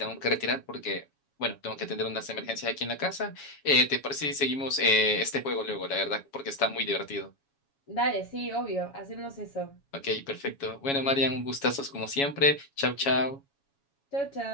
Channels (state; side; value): late; right; 7.2 ms